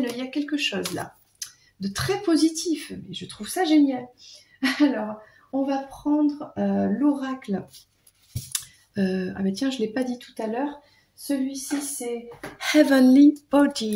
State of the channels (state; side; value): identical; both; correlation 1.00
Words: Il y a quelque chose là de très positif. Je trouve ça génial. Alors, on va prendre l'oracle. Je ne l'ai pas dit tout à l'heure. Celui-ci, c'est Heavenly